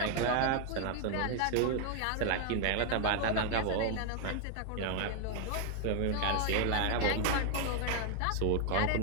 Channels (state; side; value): different; both; correlation 0.00